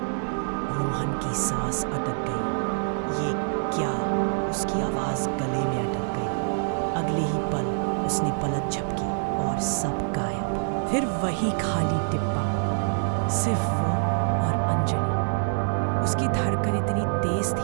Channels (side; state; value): left; silent; digital silence